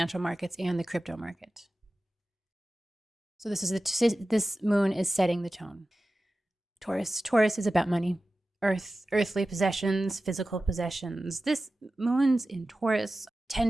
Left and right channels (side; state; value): both; normal; correlation 0.95